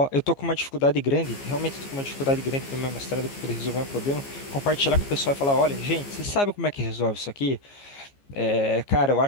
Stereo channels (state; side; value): late; right; 15 ms